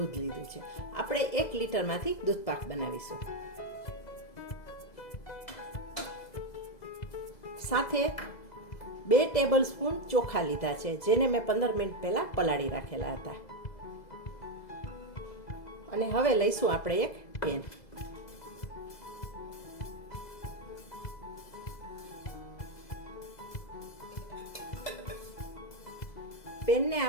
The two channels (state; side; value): late; right; 2.0 ms